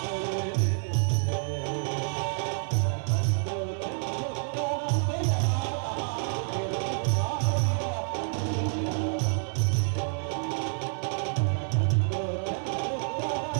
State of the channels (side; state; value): left; silent; 59 dB below the other